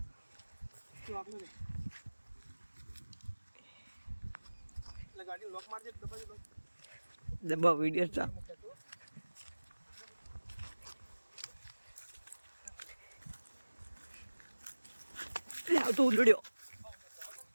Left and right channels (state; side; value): inverted; both; correlation -1.00